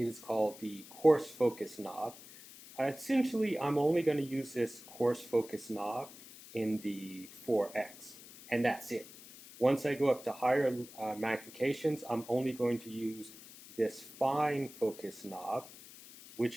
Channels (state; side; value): noise; left; hiss, 18 dB below the sound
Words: is called the coarse focus knob. Essentially, I'm only going to use this coarse focus knob in the 4x, and that's it. Once I go up to higher magnifications, I'm only going to use this fine focus knob,